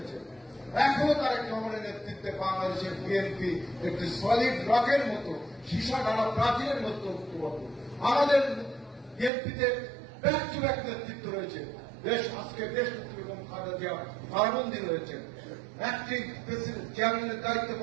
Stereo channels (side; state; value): left; drops out; at 9.3 s